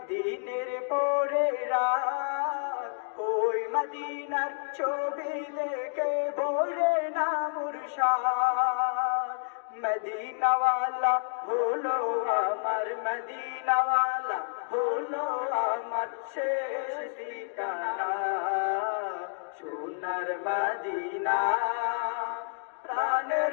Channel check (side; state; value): right; silent; digital silence